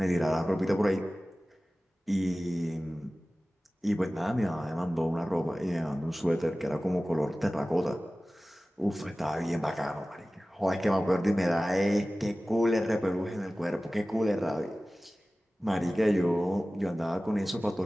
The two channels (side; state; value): both; normal; correlation 0.97